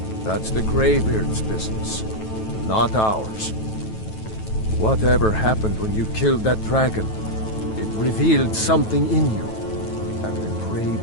That's the Greybeards' business, not ours. Whatever happened when you killed that dragon, it revealed something in you, and the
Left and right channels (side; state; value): right; late; 9.2 ms